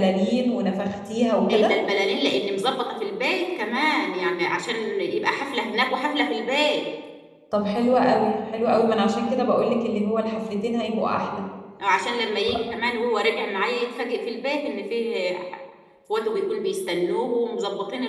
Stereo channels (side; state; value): both; identical; correlation 1.00